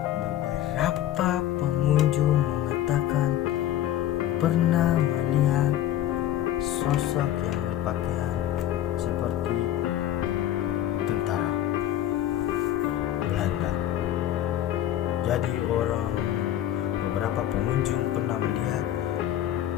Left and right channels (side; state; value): right; quieter; 12.2 dB